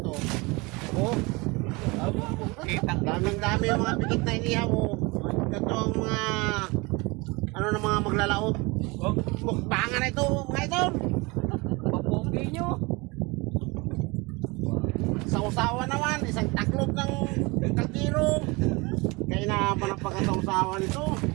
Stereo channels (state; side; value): quieter; left; 25.6 dB